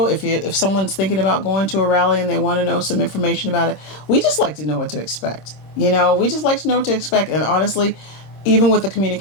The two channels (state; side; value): late; right; 26 ms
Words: if someone's thinking about going to a rally and they want to know some information about it. We just like to know what to expect. You know, we just like to know what to expect. And honestly, even with the